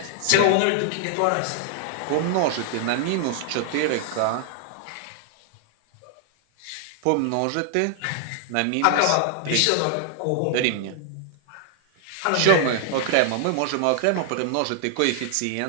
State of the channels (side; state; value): both; different; correlation 0.00